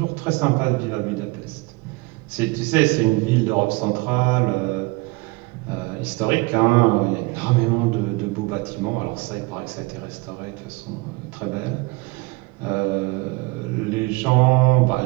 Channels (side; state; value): left; quieter; 24.8 dB